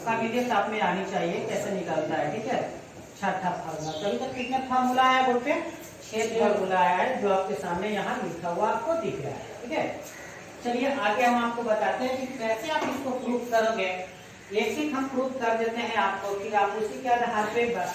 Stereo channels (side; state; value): both; identical; correlation 1.00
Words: वीडियो आप में आनी चाहिए कैसे निकलता है, ठीक है। छठा फॉर्मूला, तो अभी तक कितने फॉर्मूला है बोर्ड पे, 6 फॉर्मूला है जो आपके सामने यहाँ लिखा हुआ आपको दिख रहा है, ठीक है। चलिए आगे हम आपको बताते हैं कि कैसे आप इसको प्रूफ करोगे। एक ही हम प्रूफ कर देते हैं आपको, फिर आप उसी के आधार पे